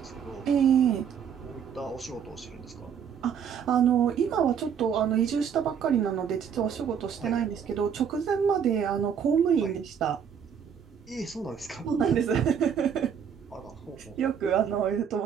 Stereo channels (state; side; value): quieter; left; 7.7 dB